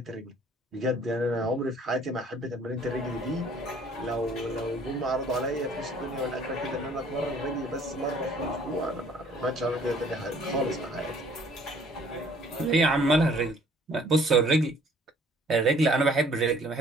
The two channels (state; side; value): normal; both; correlation 0.57